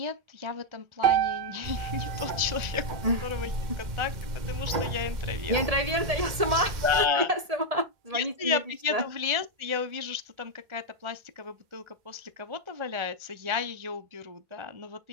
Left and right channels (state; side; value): late; left; 1.7 ms